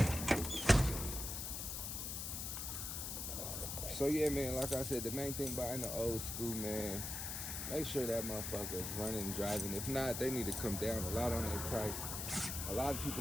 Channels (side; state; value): left; noise; hiss, 4 dB below the sound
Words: So yeah, man, like I said, the main thing buying the old school, man, make sure that motherfucker's running, driving. If not, they need to come down a lot on their price. A lot of people